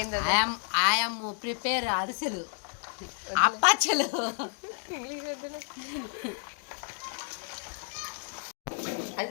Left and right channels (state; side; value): silent; right; 57 dB below the other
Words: ఐఎమ్ ప్రిపేర్ అరిసెలు, అప్పచ్చలు.